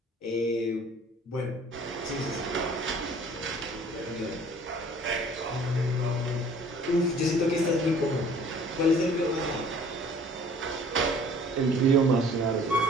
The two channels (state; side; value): normal; both; correlation 0.52